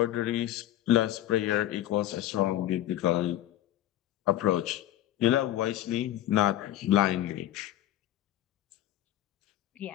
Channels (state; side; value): quieter; right; 13.5 dB